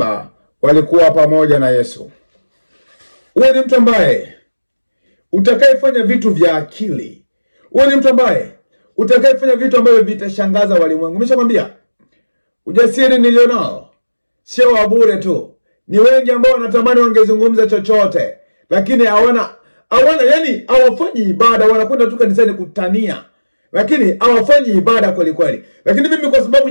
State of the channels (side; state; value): both; inverted; correlation -1.00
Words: walikuwa pamoja na Yesu. Uwe ni mtu ambaye utakayefanya vitu vya akili. Uwe ni mtu ambaye utakayefanya vitu ambavyo vitashangaza walimwengu. Nimeshakwambia ujasiri nilionao sio wa bure tu. Ni wengi ambao wanatamani wangezungumza chochote, lakini hawana yani hawafanyi ibada, wanakwenda tu kanisani kutania, lakini hawafanyi ibada kweli kweli. Lakini mimi kwa sababu